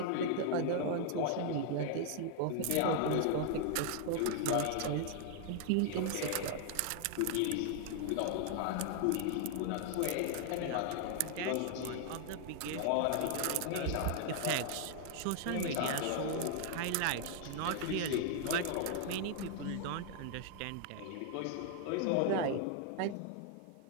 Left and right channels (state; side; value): different; both; correlation 0.00